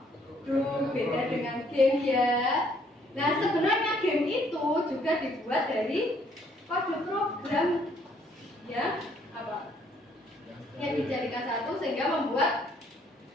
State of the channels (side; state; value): both; normal; correlation 0.66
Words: beda dengan game ya. Nah, sebenarnya game itu juga dibuat dari kode program yang apa? Yang dijadikan satu sehingga